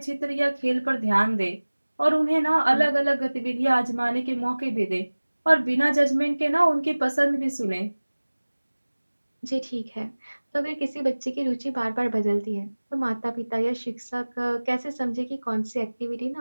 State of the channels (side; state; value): both; inverted; correlation -1.00